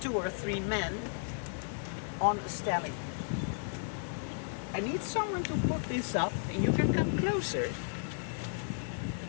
or 3 men on a stelling. I need someone to put this up, and you can come closer.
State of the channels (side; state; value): right; silent; digital silence